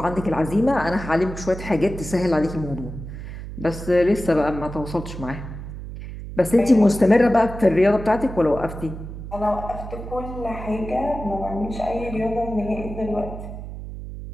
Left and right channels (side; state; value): right; noise; hum, 10 dB below the sound